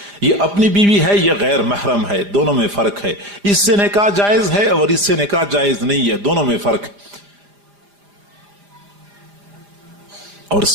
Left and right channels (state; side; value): late; left; 4.9 ms